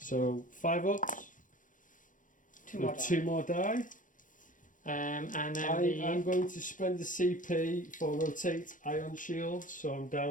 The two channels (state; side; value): late; right; 0.38 ms